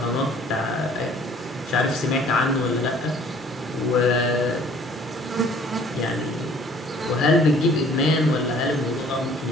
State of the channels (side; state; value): both; normal; correlation 0.55